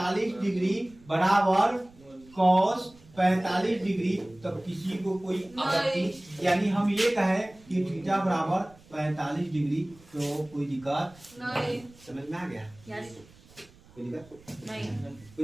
डिग्री बराबर cos 45 डिग्री, तब किसी को कोई आपत्ति, यानी हम ये कहें कि थीटा बराबर 45 डिग्री तो कोई दिक्कत नहीं समझ में आ गया, यस कोई दिक्कत नहीं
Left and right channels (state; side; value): noise; right; rumble, 25 dB below the sound